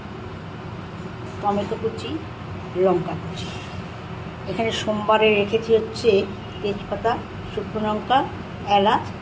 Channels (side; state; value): both; identical; correlation 1.00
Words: টমেটো কুচি, লঙ্কা কুচি। এখানে সোমবারে রেখেছি হচ্ছে তেজপাতা, শুকনো লঙ্কা, এলাচ,